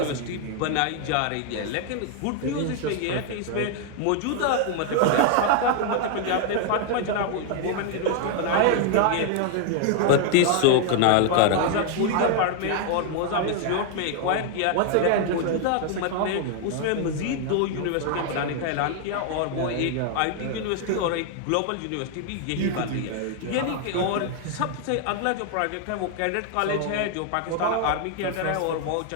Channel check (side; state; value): both; different; correlation 0.00